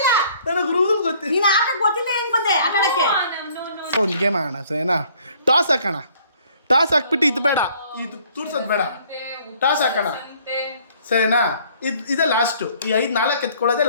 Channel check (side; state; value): both; inverted; correlation -0.59